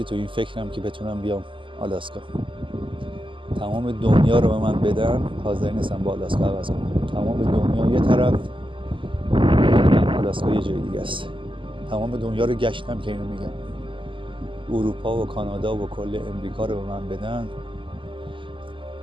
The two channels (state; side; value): late; left; 0.25 ms